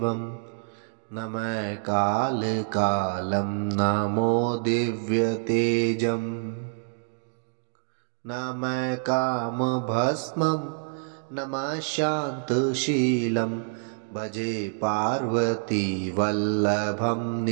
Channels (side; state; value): left; silent; digital silence